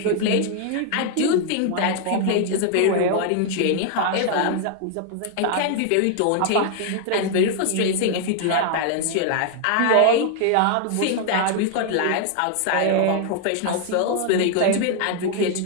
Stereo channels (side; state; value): both; different; correlation 0.00